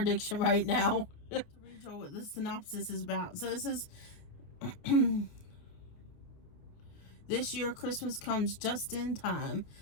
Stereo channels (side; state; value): right; late; 28 ms